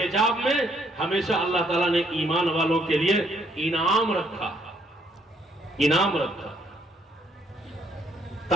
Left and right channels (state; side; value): normal; both; correlation 0.68